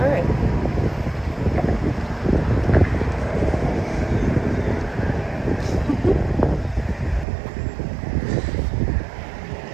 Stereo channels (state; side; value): drops out; left; at 7.2 s